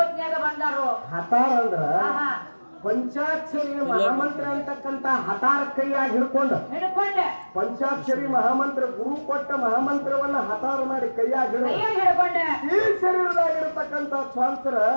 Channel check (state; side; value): inverted; both; correlation -1.00